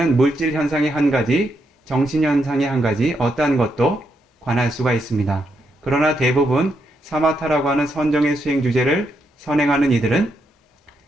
물질 현상의 한 가지, 정신현상의 한 가지, 어떠한 것도 관할 수가 있습니다. 그러나 대부분 사마타라고 하는 선정의 수행 주제를 선행하는 이들은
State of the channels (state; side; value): normal; both; correlation 0.80